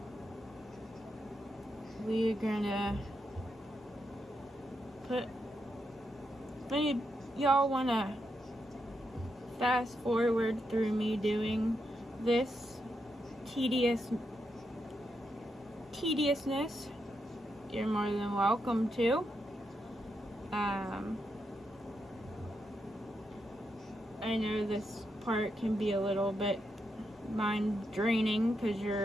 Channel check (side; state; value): both; normal; correlation 0.83